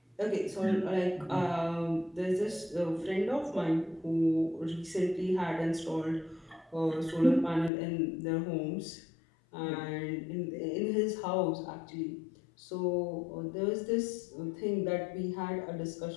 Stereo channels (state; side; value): drops out; right; at 7.7 s